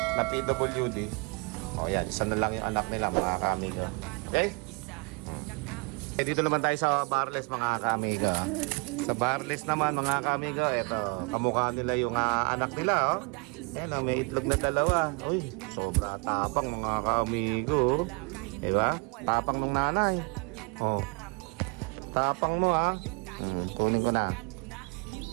na PWD. O yan, isa na lang yung anak nila, mga kaamigo. Okay? Dito naman tayo sa Barles, mga kaamigo. Sa Barles naman, mga kaamigo, eto, kamukha nila yung anak nila, oh. Yan, may itlog na dalawa. Uy, sobra tapang, mga kaamigo. Diba? Tapang ng nanay. Oh. Tapang mo, ha. Tunin ko na.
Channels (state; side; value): quieter; left; 31.8 dB